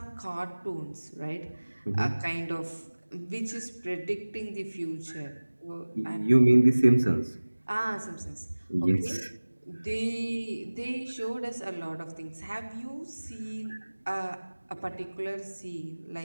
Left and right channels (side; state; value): both; inverted; correlation -1.00